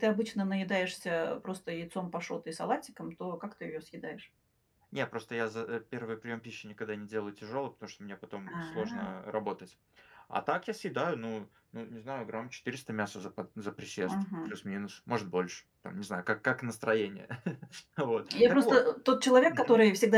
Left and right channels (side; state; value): both; identical; correlation 1.00